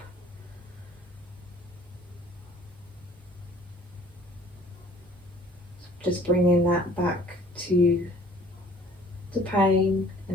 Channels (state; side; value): normal; both; correlation 0.53